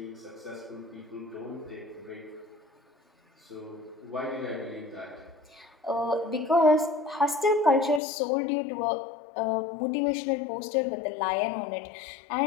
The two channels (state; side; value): drops out; right; at 8.0 s